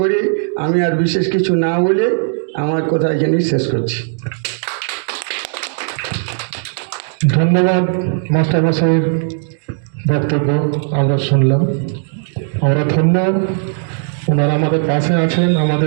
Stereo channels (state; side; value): silent; left; digital silence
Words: করে আমি আর বিশেষ কিছু না বলে আমার কথা এখানেই শেষ করছি। ধন্যবাদ মাস্টারমশাইয়ের বক্তব্য আমরা শুনলাম। আমরা ধন্য, ওনারা আমাদের পাশে আছেন,